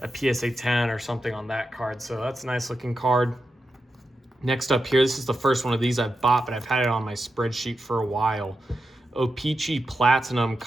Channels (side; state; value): both; normal; correlation 0.89